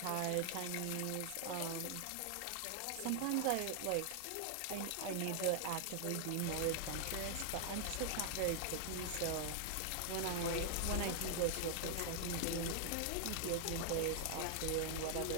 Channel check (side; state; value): both; different; correlation 0.00